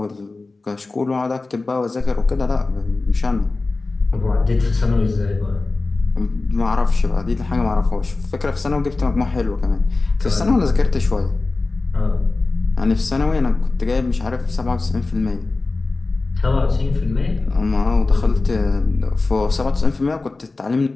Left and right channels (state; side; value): quieter; right; 3.5 dB